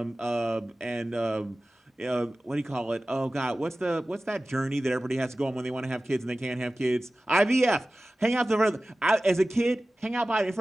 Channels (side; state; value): both; normal; correlation 0.96